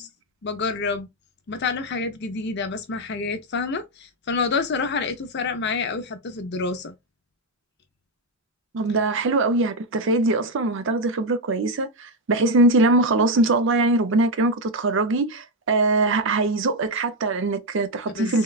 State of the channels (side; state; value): both; normal; correlation 0.05